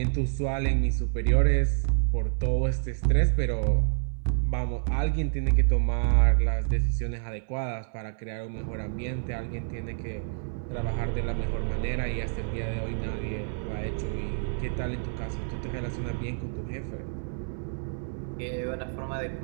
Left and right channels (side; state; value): left; silent; 59 dB below the other